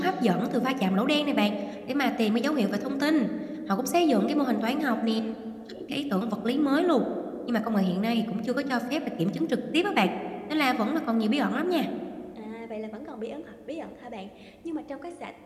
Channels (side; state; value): both; identical; correlation 1.00